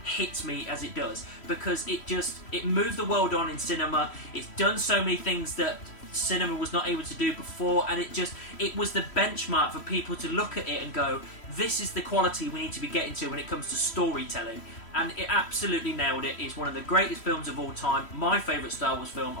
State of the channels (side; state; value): right; late; 3.1 ms